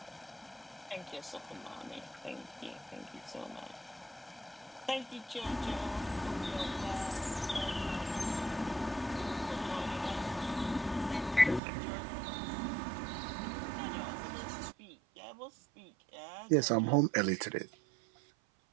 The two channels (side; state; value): left; drops out; at 11.6 s